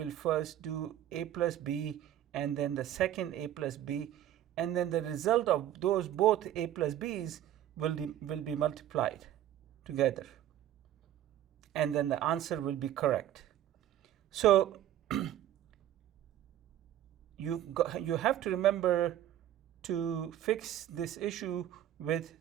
first do a plus b and then the second a plus b, and then the result of those both a plus b's will be multiplied together, and then the answer will be correct. So you have to remember to fix this issue with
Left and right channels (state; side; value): quieter; left; 11.9 dB